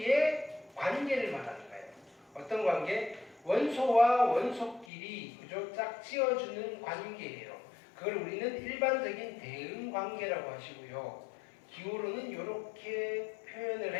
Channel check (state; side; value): drops out; right; at 4.9 s